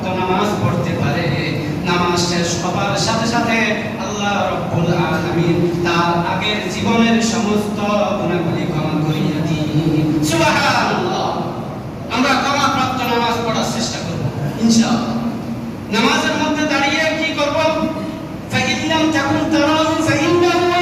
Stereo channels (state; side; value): identical; both; correlation 1.00